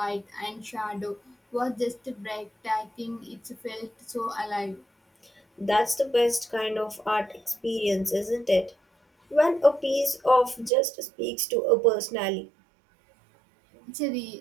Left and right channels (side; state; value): left; drops out; at 10.7 s